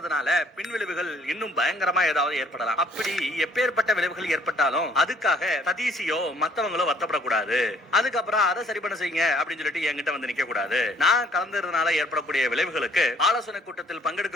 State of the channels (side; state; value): both; normal; correlation 0.61